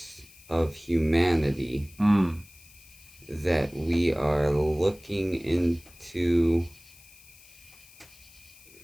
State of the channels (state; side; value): noise; left; hiss, 23 dB below the sound